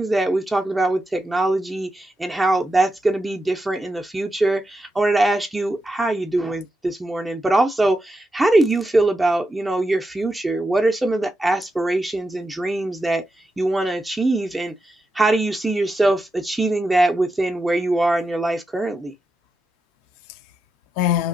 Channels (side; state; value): both; normal; correlation 0.87